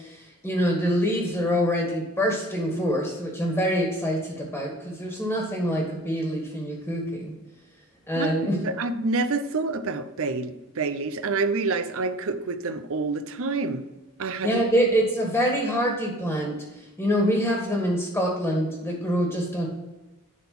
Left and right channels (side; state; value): both; normal; correlation 0.47